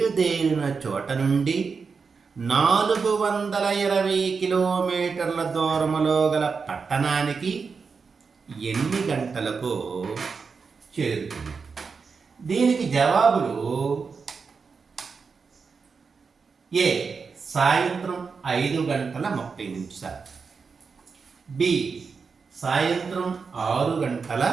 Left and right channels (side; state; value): left; quieter; 5.2 dB